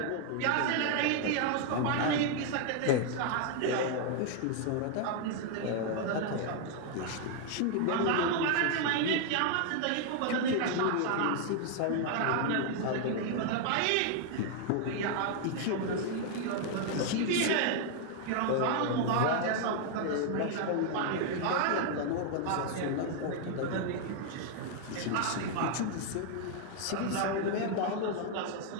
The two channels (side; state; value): both; different; correlation 0.00